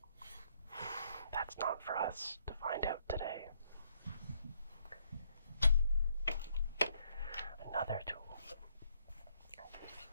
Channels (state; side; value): inverted; both; correlation -0.71